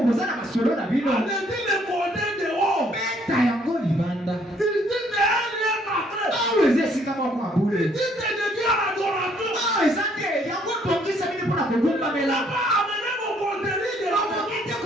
boza na masolo na bino allez-y les côtés de haut. beta yango libanda Ici, c'est un lieu sacré. awa eza esika moko ya bule Ici, c'est dédié à l'adoration. awa eza te yango tongisa bino mpona kogumbamela Pas amener vos coteries de la bakoki te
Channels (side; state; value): both; normal; correlation 0.65